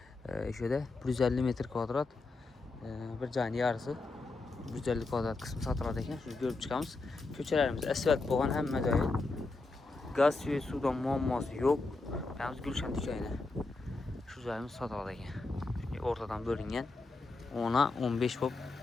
şöyle 150 metre kvadrat bir canı yarısı 150 kvadrat kısmı satılады ekan. Şunu görüp çıkamız. Köçelerimiz asfalt boğan hem joyi. Gaz suyu sudan muamması yok. Yalnız Gülşen dükkanı. Şu joyimiz satılады ekan. Ortadan bölüngen 10'a 15 bop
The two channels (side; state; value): right; quieter; 3.5 dB